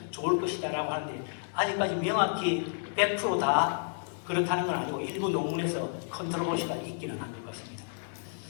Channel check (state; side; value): silent; right; digital silence